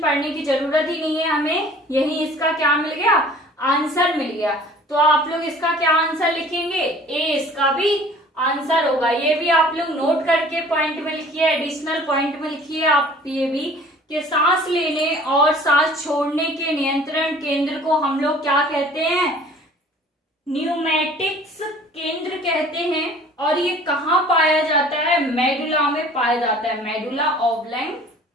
की जरूरत ही नहीं है, हमें यही इसका क्या मिल गया? आंसर मिल गया। तो आप लोग इसका क्या आंसर लिखेंगे? ए इसका भी आंसर होगा। ये भी आप लोग नोट करके पॉइंट में लिखिए, एडिशनल पॉइंट में लिखिए आप ये भी कि सांस लेने और सांस छोड़ने के नियंत्रण केंद्र को हम लोग क्या कहते हैं? न्यूमैटिक्स केंद्र कहते हैं। और ये कहाँ पाया जाता है? मेडुला में पाया जाता है। मेडुला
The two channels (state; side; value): normal; both; correlation 0.49